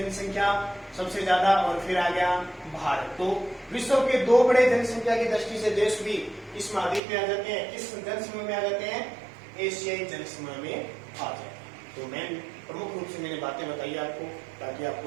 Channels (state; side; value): drops out; left; at 7.0 s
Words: सबसे ज्यादा, और फिर आ गया भारत। तो विश्व के 2 बड़े जनसंख्या की दृष्टि से देश भी इस महाद्वीप में आ जाते हैं। किस जनसमूह में आ जाते हैं, एशियाई जनसमूह में आ जाते हैं। तो मैं प्रमुख रूप से मैंने बातें बताई आपको, ताकि